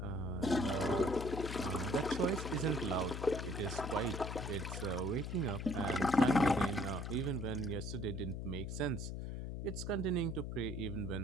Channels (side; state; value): left; noise; hum, 5 dB below the sound